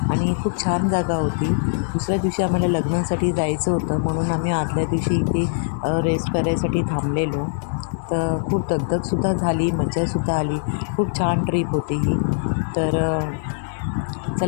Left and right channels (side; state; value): right; silent; digital silence